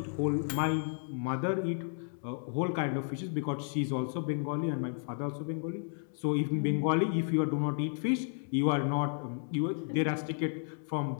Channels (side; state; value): right; silent; digital silence